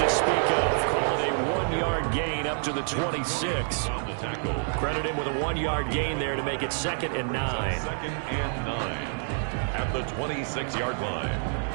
to speak of. Call it a 1-yard gain up to the 26. Credit him with a 1-yard gain there to make it 2nd and 9. 2nd and 9 at the 26-yard line.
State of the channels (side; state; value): left; silent; digital silence